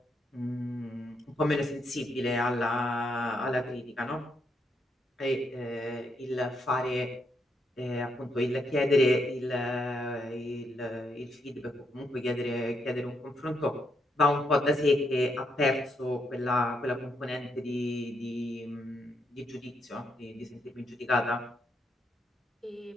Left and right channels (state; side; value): normal; both; correlation 0.78